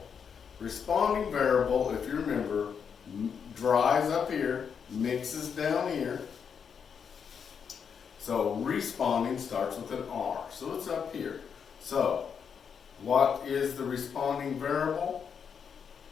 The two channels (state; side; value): quieter; right; 6.9 dB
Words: Responding variable, if you remember, dries up here, mixes down here. So, responding starts with an R, so it's up here. So, what is the responding variable?